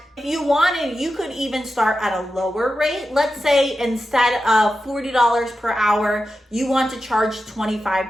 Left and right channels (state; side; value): normal; both; correlation 0.91